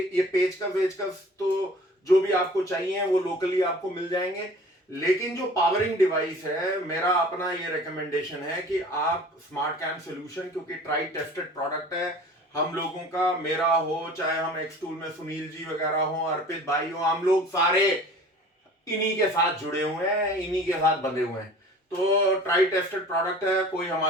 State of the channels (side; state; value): both; normal; correlation 0.45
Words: पेचकस तो जो भी आपको चाहिए वो लोकली आपको मिल जाएंगे। लेकिन जो पावरिंग डिवाइस है, मेरा अपना ये रिकमेंडेशन है कि आप स्मार्ट कैम सोल्यूशन, क्योंकि ट्राई टेस्टेड प्रोडक्ट है हम लोगों का, मेरा हो चाहे हम एक्सटूल में सुनील जी वगैरह हो, अर्पित भाई हो, हम लोग सारे इन्हीं के साथ जुड़े हुए हैं, इन्हीं के साथ बंधे हुए हैं। तो ट्राई टेस्टेड प्रोडक्ट है, कोई